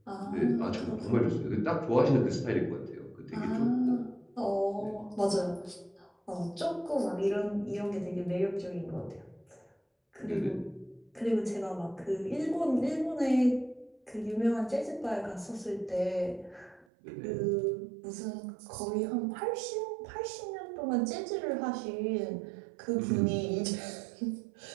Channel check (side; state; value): left; drops out; at 16.9 s